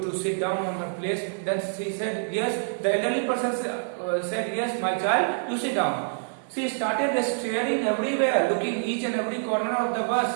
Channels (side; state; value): left; silent; digital silence